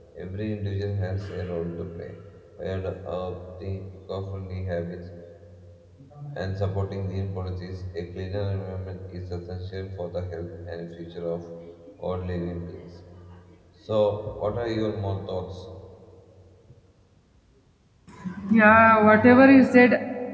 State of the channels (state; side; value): identical; both; correlation 1.00